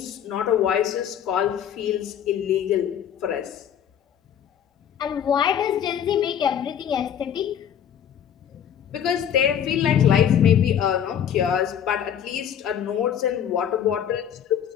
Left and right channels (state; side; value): quieter; right; 9.2 dB